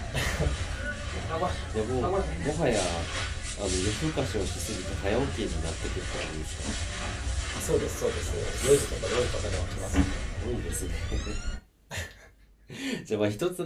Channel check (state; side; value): identical; both; correlation 1.00